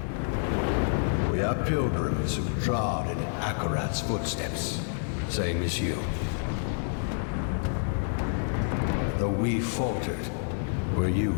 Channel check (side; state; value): right; silent; digital silence